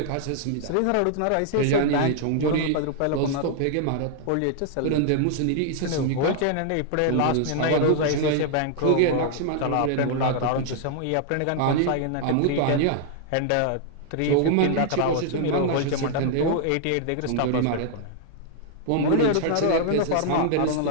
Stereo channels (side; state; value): both; different; correlation 0.00